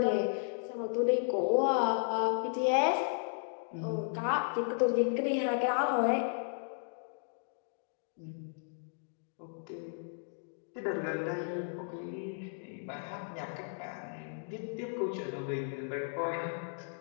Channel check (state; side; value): silent; right; digital silence